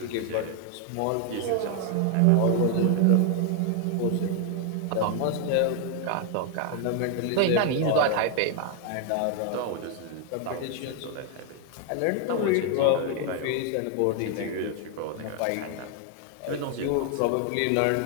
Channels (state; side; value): different; both; correlation 0.01